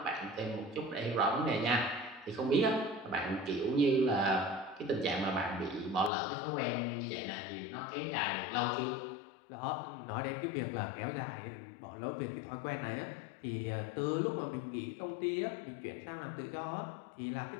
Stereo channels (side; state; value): right; drops out; at 6.1 s